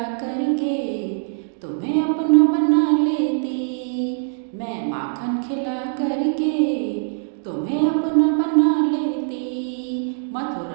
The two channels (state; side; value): silent; left; digital silence